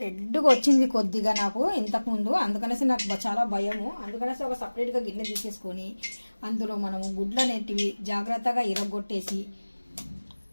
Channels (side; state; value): both; inverted; correlation -1.00